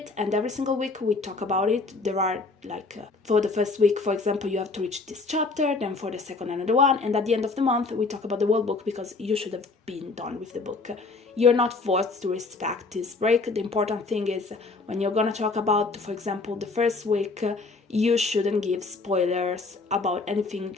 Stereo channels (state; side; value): quieter; right; 3.9 dB